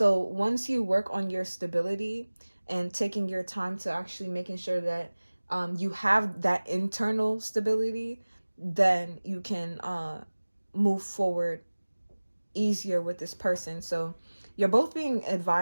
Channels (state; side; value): inverted; both; correlation -1.00